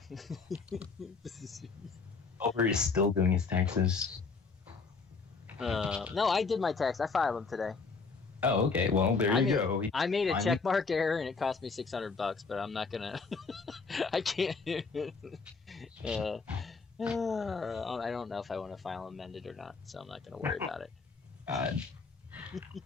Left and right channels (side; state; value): right; quieter; 4.6 dB